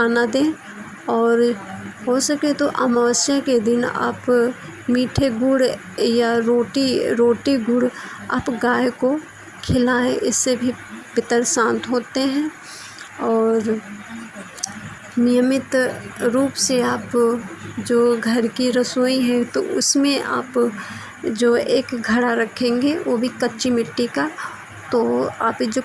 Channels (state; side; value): identical; both; correlation 1.00